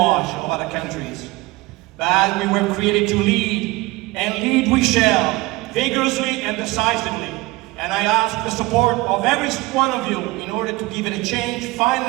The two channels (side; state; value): left; quieter; 21.4 dB